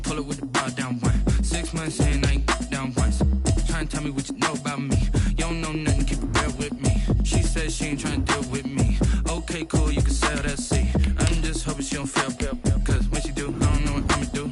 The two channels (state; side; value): identical; both; correlation 1.00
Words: it with the bar down one. 6 months saying I ain't down once. Trying to tell me what you know about me. You don't know nothing, keep it real with me. She said she ain't trying to deal with me. Okay, cool, you can sell that seat. I'm just hoping she don't fail. Cause when she do, I don't know what I'ma do.